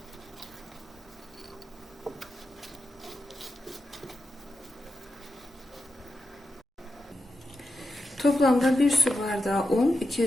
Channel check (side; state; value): both; normal; correlation 0.89